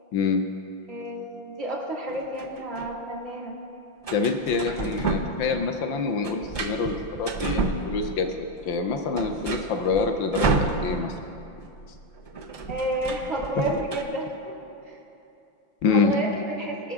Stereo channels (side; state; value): right; late; 5.8 ms